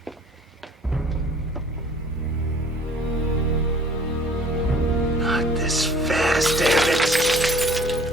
Not this fast, damn it.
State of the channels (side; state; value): both; normal; correlation 0.52